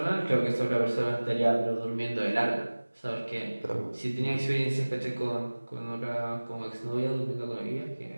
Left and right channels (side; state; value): both; inverted; correlation -1.00